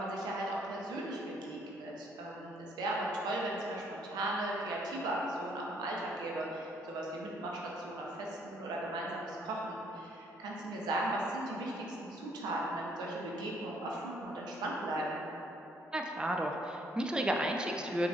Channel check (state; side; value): normal; both; correlation 0.66